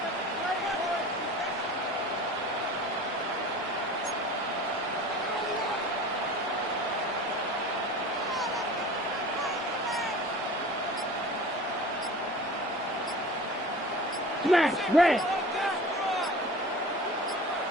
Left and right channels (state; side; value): normal; both; correlation 0.39